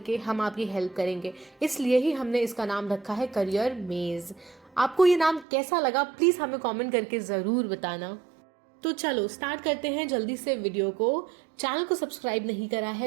हम आपकी हेल्प करेंगे। इसलिए ही हमने इसका नाम रखा है करियर मेज। आपको ये नाम कैसा लगा प्लीज़ हमें कमेंट करके ज़रूर बताना। तो चलो स्टार्ट करते हैं जल्दी से वीडियो को। चैनल को सब्सक्राइब नहीं करा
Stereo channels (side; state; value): left; drops out; at 5.5 s